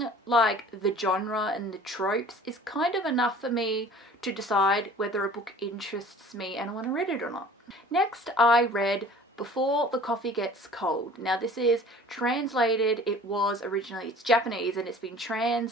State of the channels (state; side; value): normal; both; correlation 0.47